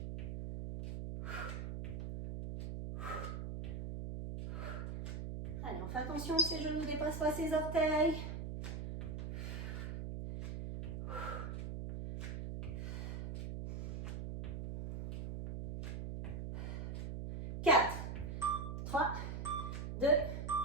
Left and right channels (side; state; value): right; noise; hum, 5 dB below the sound